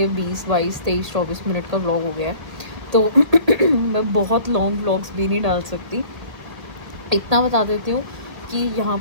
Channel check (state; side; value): late; left; 1.5 ms